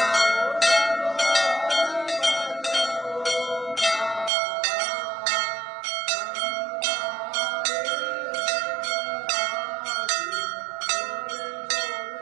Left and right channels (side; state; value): left; drops out; at 4.3 s